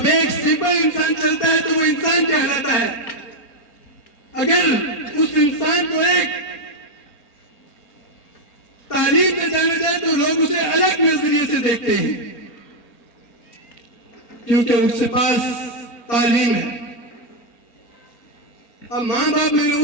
एक सिंपल इंसान चलता है तो वो इंसान कहलाता है। अगर उस इंसान को एक तालीम से जाना जाए तो लोग उसे अलग नजरिए से देखते हैं, क्योंकि उसके पास तालीम है। अब माँ बाप मैंने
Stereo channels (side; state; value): right; late; 4.3 ms